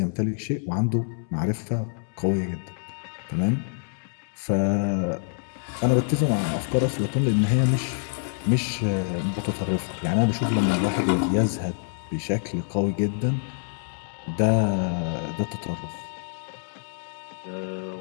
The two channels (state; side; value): silent; right; 61 dB below the other